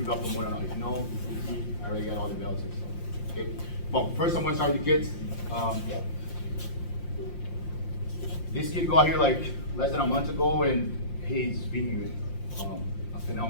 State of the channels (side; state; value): right; late; 5.7 ms